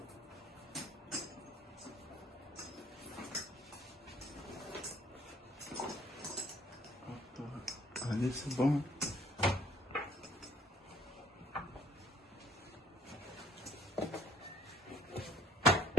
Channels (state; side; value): normal; both; correlation 0.59